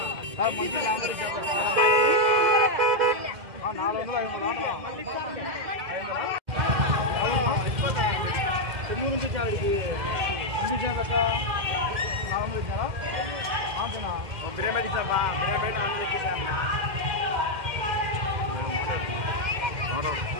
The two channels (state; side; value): late; left; 2.1 ms